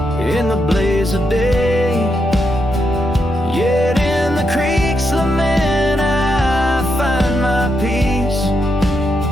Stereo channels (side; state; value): both; normal; correlation 0.82